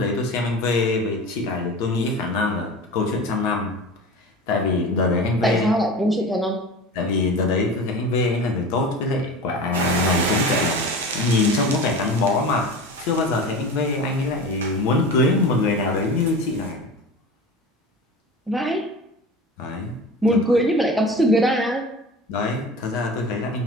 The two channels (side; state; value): both; normal; correlation 0.33